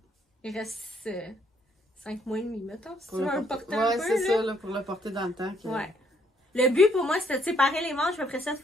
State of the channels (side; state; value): both; normal; correlation 0.69